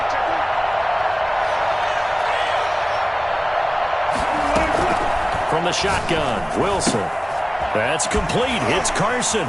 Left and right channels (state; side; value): identical; both; correlation 1.00